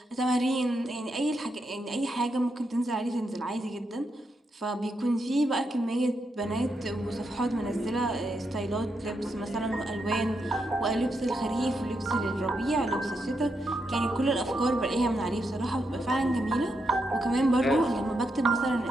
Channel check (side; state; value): both; normal; correlation 0.83